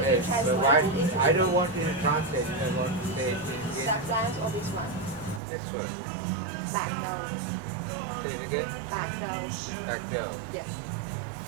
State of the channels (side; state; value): left; drops out; at 5.4 s